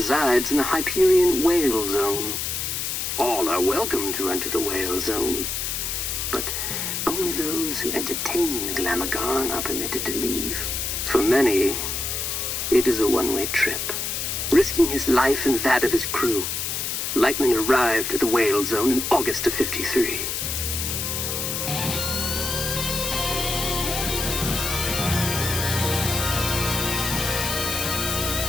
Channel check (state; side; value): noise; left; hiss, 2 dB below the sound